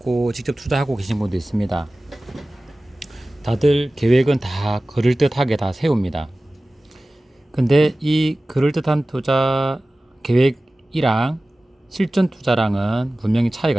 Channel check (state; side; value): normal; both; correlation 0.97